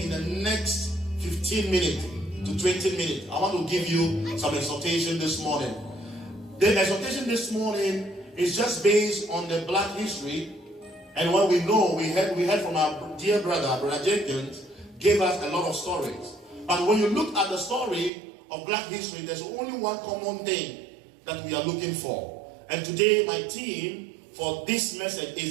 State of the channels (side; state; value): left; drops out; at 18.1 s